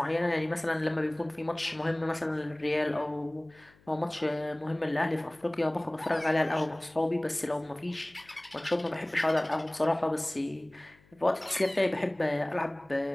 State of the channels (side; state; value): left; noise; hum, 29 dB below the sound